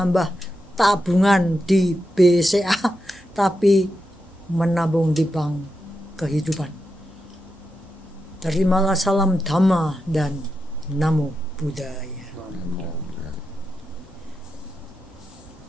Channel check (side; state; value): both; normal; correlation 0.87